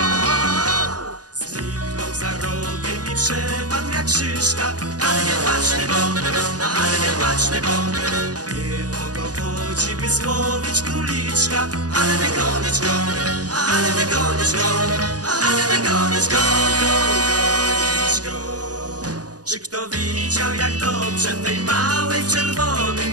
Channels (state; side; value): late; left; 0.68 ms